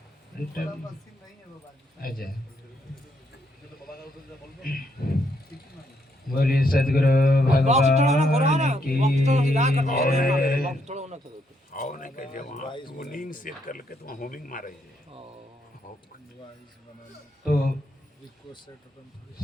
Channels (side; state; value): both; normal; correlation 0.75